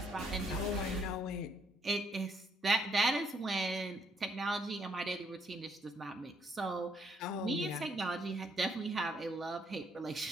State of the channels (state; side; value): normal; both; correlation 0.71